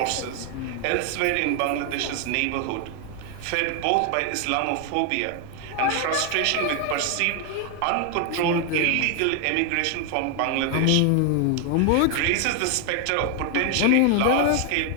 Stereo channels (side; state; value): both; different; correlation 0.01